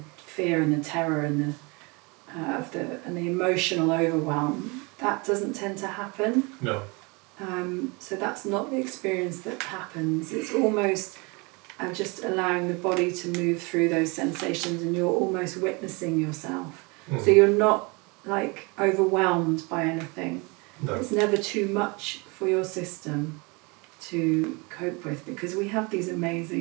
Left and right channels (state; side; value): quieter; left; 28.5 dB